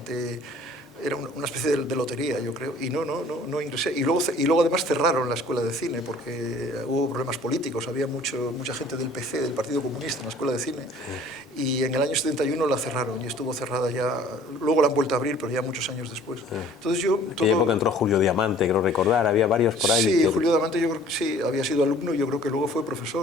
Era una especie de lotería, yo creo, y no ingresé. Y luego además cerraron la escuela de cine, porque hubo problemas políticos, había mucha gente del PC, del Partido Comunista, en la escuela de cine, y en el año 71 la cerraron, y estuvo cerrada ya, luego la han vuelto a abrir, pero ya muchos años después. Entonces en aquella época entró Julio Diamante, creo recordar, había varios por ahí. Sí, Julio Diamante yo creo que sí, había sido alumno, y yo creo que luego fue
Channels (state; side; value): normal; both; correlation 0.52